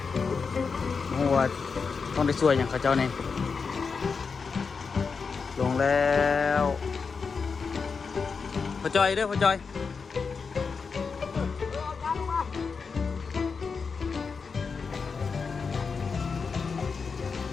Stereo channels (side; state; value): right; quieter; 5.2 dB